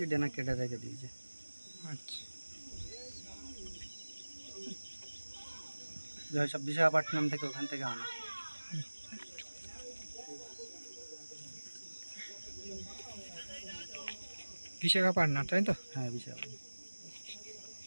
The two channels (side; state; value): both; inverted; correlation -1.00